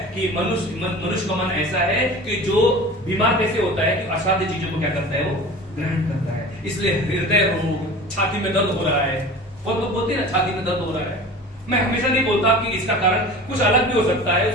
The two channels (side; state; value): both; normal; correlation 0.37